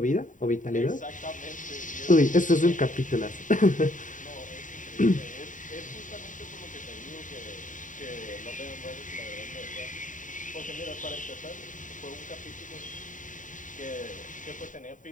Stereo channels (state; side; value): late; right; 0.37 ms